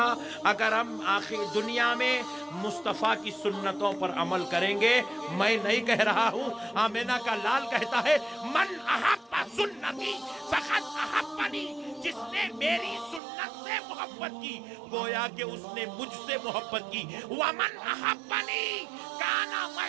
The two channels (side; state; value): left; drops out; at 13.2 s